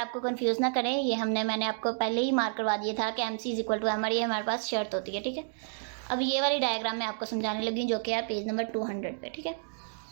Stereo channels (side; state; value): left; silent; digital silence